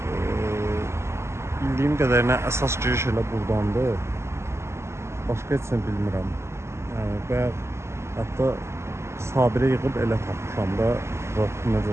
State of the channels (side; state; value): left; late; 0.13 ms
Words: Bildiyim qədərilə əsas giriş elə buradandır. Başqa heç nə bilmirəm. Və hətta Sabirə yığıb elə tapmışam da